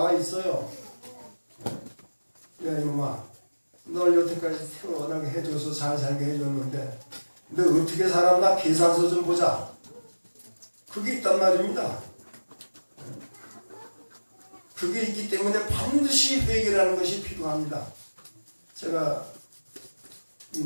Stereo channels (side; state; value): both; inverted; correlation -1.00